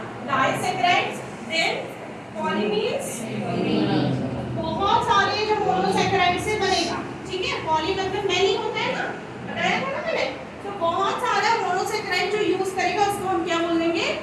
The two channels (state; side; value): identical; both; correlation 1.00